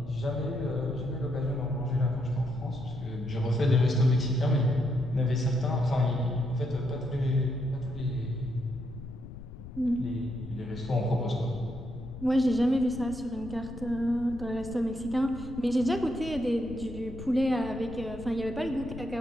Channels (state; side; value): noise; left; rumble, 13 dB below the sound